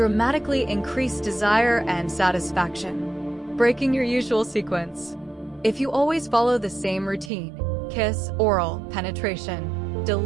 increase desire and satisfaction. Breaking your usual sequence. If you always follow the same routine, kiss, oral, penetration,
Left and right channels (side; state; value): left; drops out; at 7.3 s